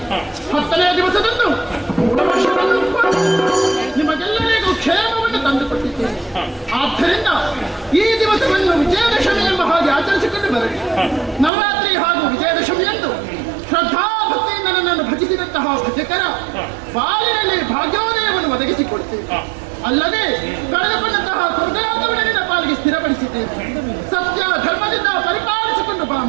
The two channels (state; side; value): drops out; left; at 11.5 s